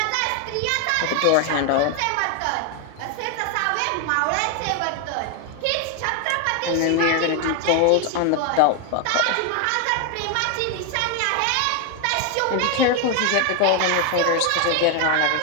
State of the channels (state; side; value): different; both; correlation 0.01